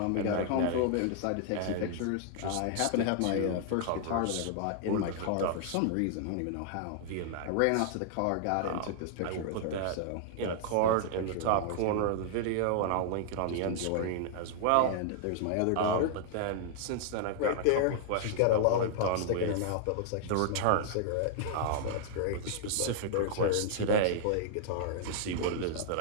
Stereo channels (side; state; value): both; different; correlation -0.01